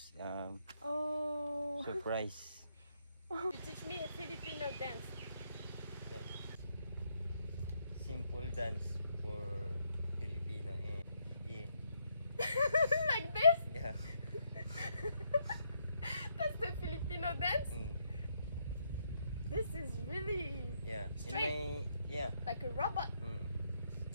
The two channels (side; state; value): both; inverted; correlation -0.75